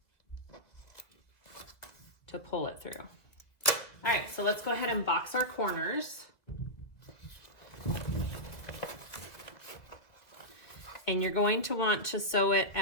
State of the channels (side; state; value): right; late; 2.1 ms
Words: to pull it through. All right, so let's go ahead and box our corners. And you're going to want to sew it